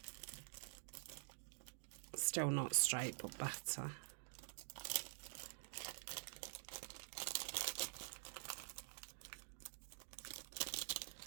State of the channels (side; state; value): left; silent; digital silence